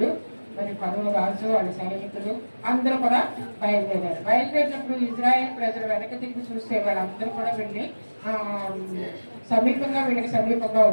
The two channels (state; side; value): inverted; both; correlation -1.00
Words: మరి పరువు రాజు వాళ్ళ సైనికులు అందరూ కూడా బయలుదేరారు. బయలుదేరినప్పుడు ఇజ్రాయెల్ ప్రజలు వెనక తిరిగి చూస్తే వాళ్ళందరూ కూడా వెళ్ళి వీళ్ళకి సమీపంగా